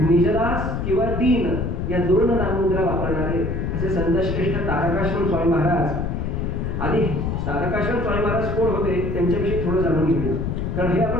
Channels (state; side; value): noise; left; rumble, 1 dB below the sound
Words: किंवा दीन या दोन नाममुद्रा वापरणारे असे संतश्रेष्ठ तारकाश्रम स्वामी महाराज. आधी तारकाश्रम स्वामी महाराज कोण होते त्यांच्याविषयी थोडं जाणून घेऊया, कारण हे